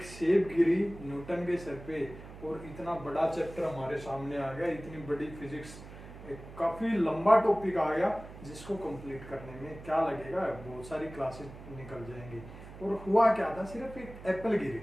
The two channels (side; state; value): right; noise; hum, 15 dB below the sound